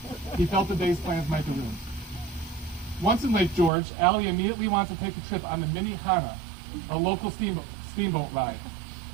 He felt the day's plans might be ruined. Once in Lake George, Allie immediately wanted to take a trip on the Mini Hana, a local steamboat ride.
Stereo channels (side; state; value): left; drops out; at 3.7 s